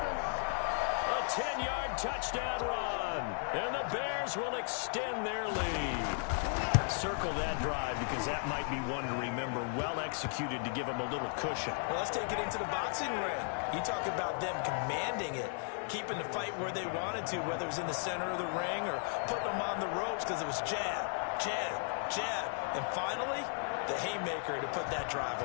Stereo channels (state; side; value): silent; right; 54 dB below the other